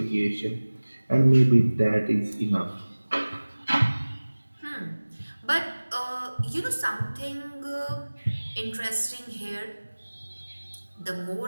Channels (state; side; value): inverted; both; correlation -1.00